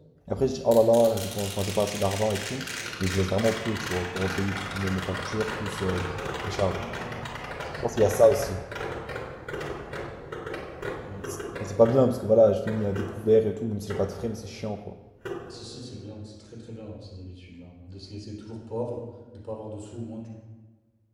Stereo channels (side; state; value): both; identical; correlation 1.00